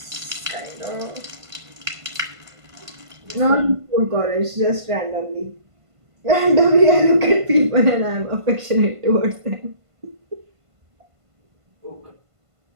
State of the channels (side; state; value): left; late; 1.5 ms